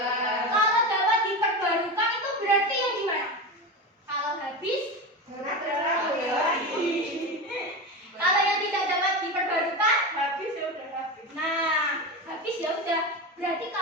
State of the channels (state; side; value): normal; both; correlation 0.22